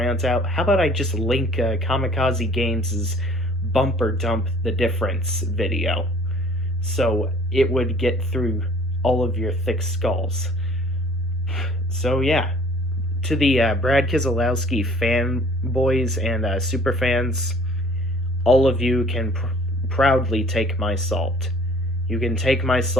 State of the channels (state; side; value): normal; both; correlation 0.53